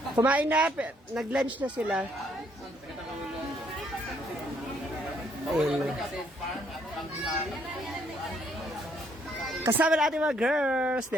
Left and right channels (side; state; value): both; normal; correlation 0.69